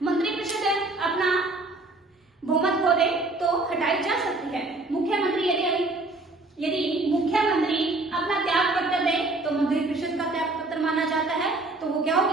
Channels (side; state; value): left; quieter; 3.1 dB